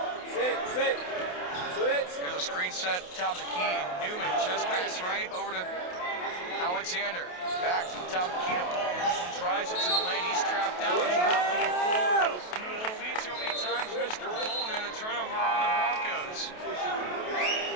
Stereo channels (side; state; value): right; late; 28 ms